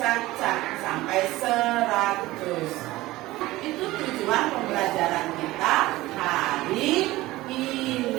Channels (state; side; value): quieter; left; 18.1 dB